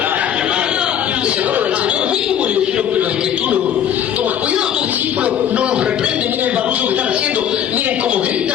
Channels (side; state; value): right; quieter; 9.5 dB